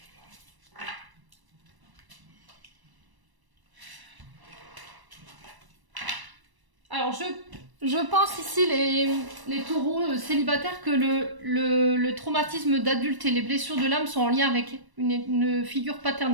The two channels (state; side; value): late; left; 1.0 ms